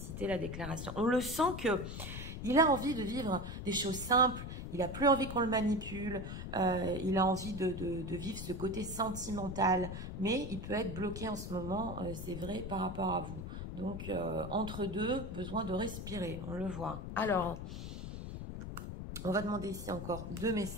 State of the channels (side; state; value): left; noise; rumble, 7 dB below the sound